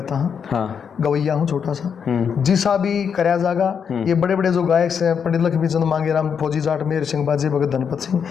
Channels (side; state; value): right; quieter; 7.0 dB